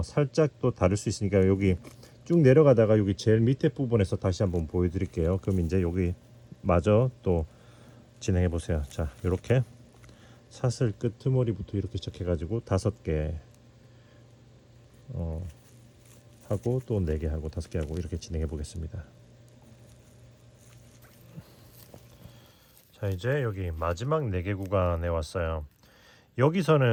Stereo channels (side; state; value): both; identical; correlation 1.00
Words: 살짝 또 다를 수 있으니까 여기 쭉 내려가다가 여기 제일 밑에 부분에서 다시 한번 보여드릴게요. 그럼 이제 여기 마저 또 진행해 보세요. 자 이렇게 사슬 끄트머리부터 이렇게 시작해가지고 5개 하고 또 4개 하고 5개 하고 이렇게 진행해 보겠습니다. 자 이제 여기 마지막 4개 구간에 왔어요.